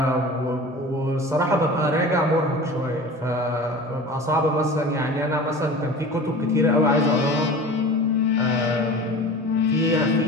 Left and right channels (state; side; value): normal; both; correlation 0.37